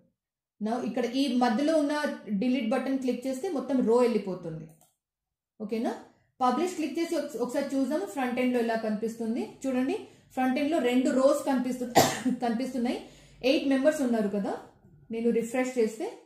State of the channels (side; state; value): both; identical; correlation 1.00